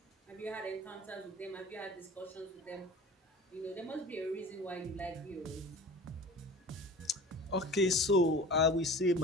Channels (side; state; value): both; normal; correlation 0.39